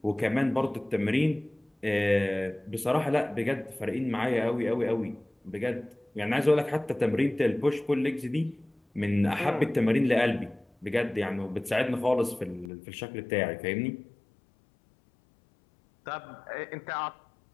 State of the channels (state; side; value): drops out; right; at 12.7 s